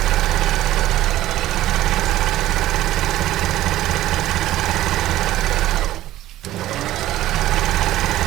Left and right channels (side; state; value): left; quieter; 14.6 dB